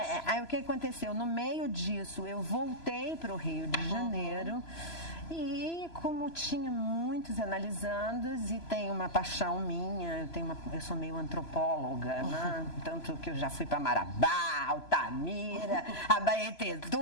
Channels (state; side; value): late; right; 3.0 ms